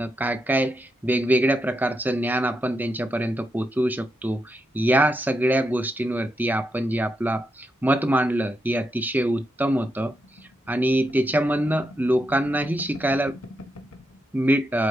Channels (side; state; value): both; normal; correlation 0.83